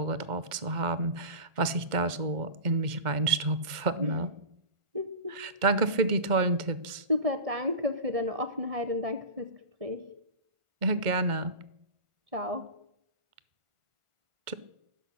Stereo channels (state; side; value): late; left; 1.4 ms